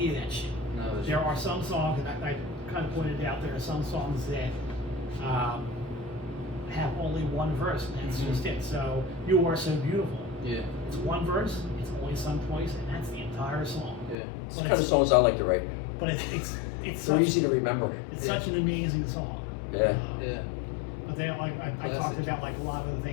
of that shit. No, that's There are some songs, and I kind of pointed out, there are some songs that have only one verse, and that's just it. So, You Are So Beautiful. Yeah. It's one verse, it's only sung twice, and that's the entire song. Yeah. It's the kind of songs I like to write. But it's They're such, easy to remember. it's such an amazing song. Yeah. Yeah. But then I talked Classic. about like a lot of the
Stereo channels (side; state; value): right; drops out; at 14.2 s